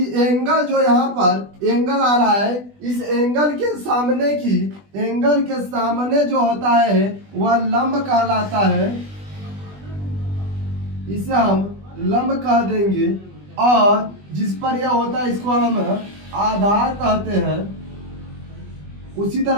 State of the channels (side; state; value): left; late; 20 ms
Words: एंगल जो यहाँ पर एंगल आ रहा है, इस एंगल के सामने की, एंगल के सामने जो होता है वह लंब कहलाता है, इसे हम लंब कह देंगे, और जिस पर यह होता है इसको हम आधार कहते हैं। उसी